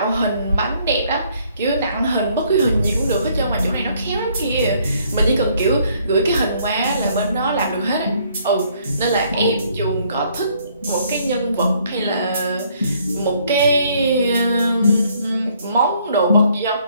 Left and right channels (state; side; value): inverted; both; correlation -0.65